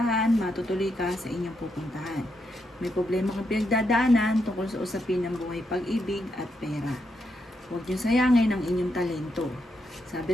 matutuloy ka sa inyong pupuntahan. May problema kang pinagdadaanan tungkol sa usapin ng buhay, pag-ibig at pera. Huwag niyo sayangin ang inyong talento.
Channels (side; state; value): both; normal; correlation 0.81